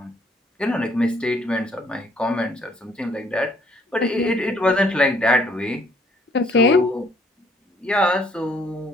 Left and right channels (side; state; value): both; normal; correlation 0.64